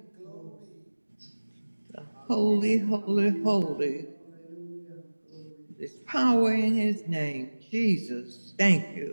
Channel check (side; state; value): both; inverted; correlation -1.00